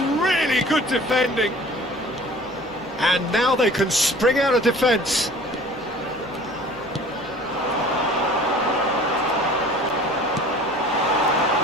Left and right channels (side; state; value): both; normal; correlation 0.46